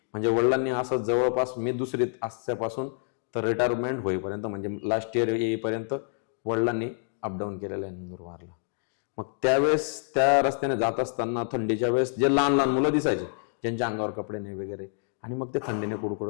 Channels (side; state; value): right; silent; digital silence